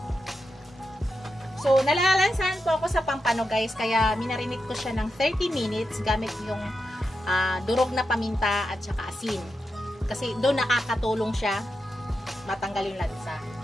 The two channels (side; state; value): both; normal; correlation 0.88